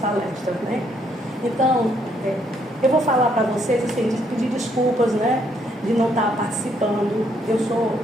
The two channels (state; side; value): normal; both; correlation 0.71